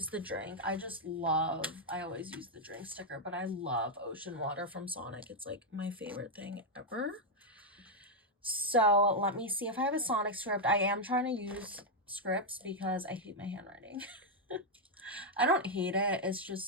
the drink. I always use the drink sticker, but I love ocean water from Sonic. It's like my favorite thing ever. So let me see if I have a Sonic script. I am trying to use scripts because I hate my handwriting. I don't hate it. It's just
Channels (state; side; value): normal; both; correlation 0.00